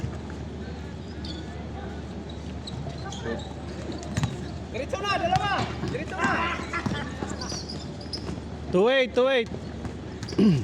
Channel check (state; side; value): identical; both; correlation 1.00